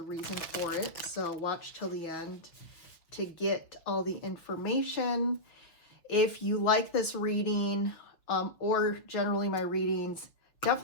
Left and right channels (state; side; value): late; right; 6.4 ms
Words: reason for it. So watch till the end to get all the information. If you like this reading or generally my readings,